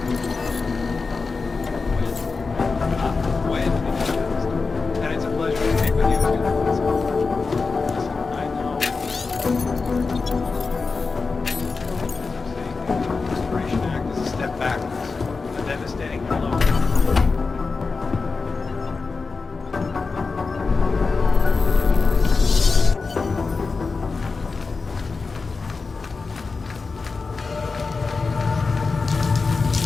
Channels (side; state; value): right; quieter; 4.3 dB